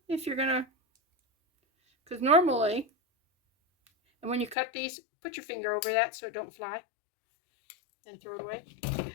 if you're going to, because normally, and when you cut these, put your finger over that so it don't fly, then throw it away.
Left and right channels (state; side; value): drops out; right; at 4.5 s